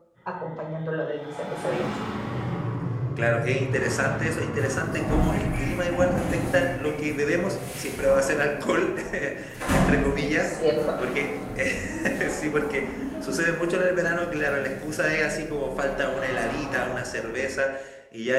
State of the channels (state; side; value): identical; both; correlation 1.00